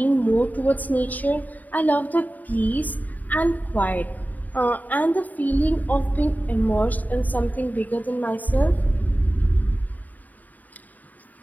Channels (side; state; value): right; late; 0.080 ms